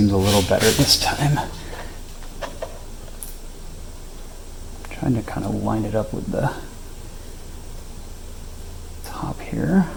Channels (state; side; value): identical; both; correlation 1.00